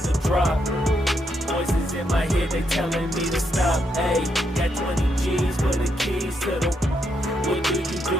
the drop. Voices in my head, they telling me to stop. Ayy, got 20 G's for the keys to the. What do you do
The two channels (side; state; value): both; normal; correlation 0.79